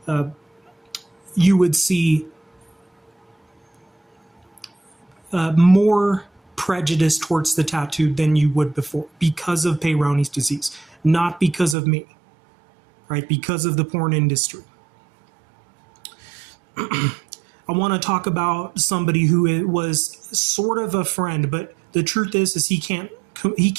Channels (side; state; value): left; drops out; at 11.8 s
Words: you would see more prejudice towards the tattooed than you would before, because of Peyronie's disease, not because of me, right? Because of the porn industry. I want to talk about somebody who was sort of a friend, but the truth is he can't